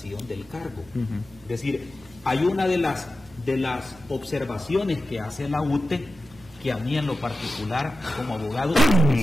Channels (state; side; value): normal; both; correlation 0.93